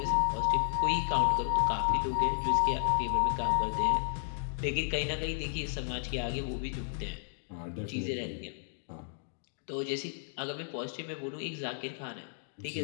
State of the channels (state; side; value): silent; right; digital silence